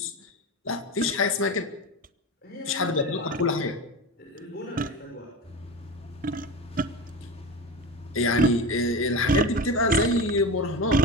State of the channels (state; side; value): normal; both; correlation 0.25